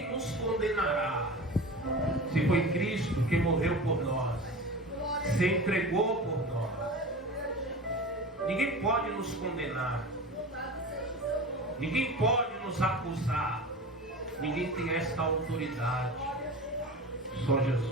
nos condenará? Se foi Cristo que morreu por nós, se entregou por nós. Ninguém pode nos condenar, ninguém pode nos acusar, ninguém tem esta autoridade. Só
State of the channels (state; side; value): normal; both; correlation 0.32